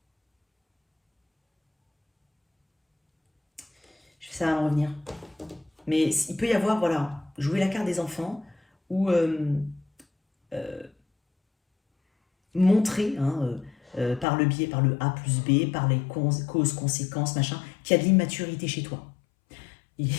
Ça va me revenir. Mais il peut y avoir, voilà, jouer la carte des enfants ou montrer, hein, par le biais, par le A plus B, par les causes, conséquences, machin, qu'il y a de l'immaturité chez toi. Il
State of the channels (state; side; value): drops out; right; at 14.2 s